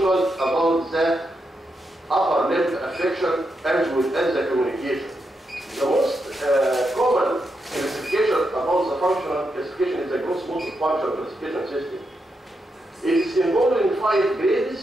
about the upper limb affection as well as the communication. The most common classification about the functional classification is the gross motor function classification system. It is involving 5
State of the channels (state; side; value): normal; both; correlation 0.84